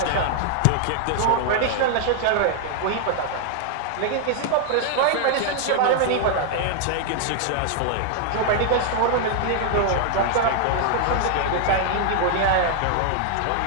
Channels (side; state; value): both; different; correlation 0.00